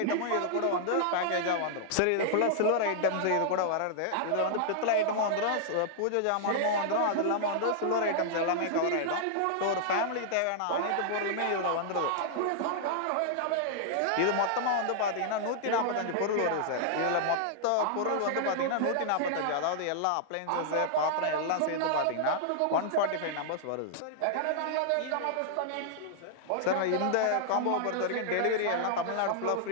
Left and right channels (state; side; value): different; both; correlation -0.01